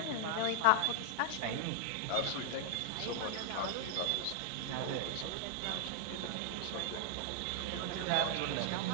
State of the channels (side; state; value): both; different; correlation -0.01